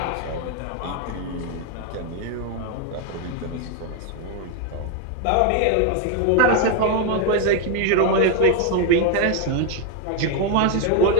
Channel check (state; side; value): different; both; correlation 0.01